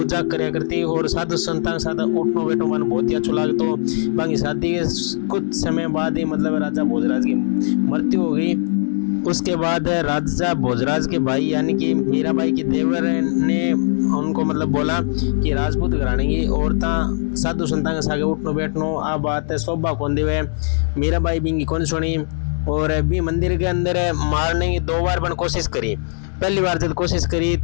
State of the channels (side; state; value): right; silent; digital silence